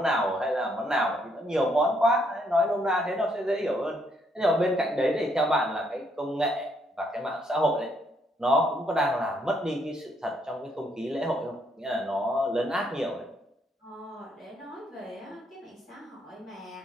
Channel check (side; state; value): both; normal; correlation 0.72